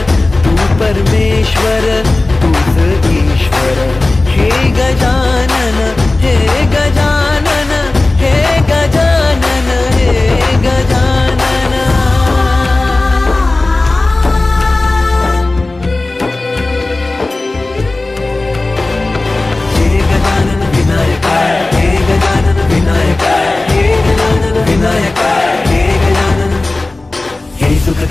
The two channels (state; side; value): quieter; right; 3.1 dB